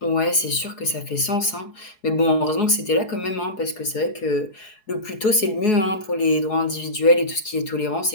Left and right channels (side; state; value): right; late; 4.7 ms